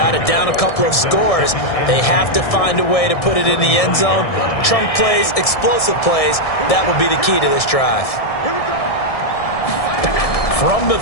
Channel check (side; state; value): right; late; 1.7 ms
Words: it. Down a couple of scores. They have to find a way to put it in the end zone. Chunk plays, explosive plays. That will be the key to this drive. From the